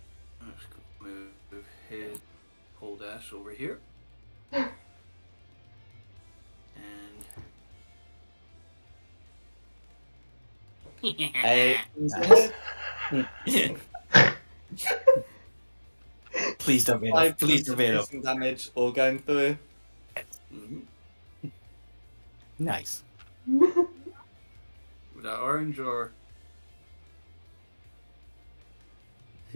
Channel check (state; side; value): inverted; both; correlation -1.00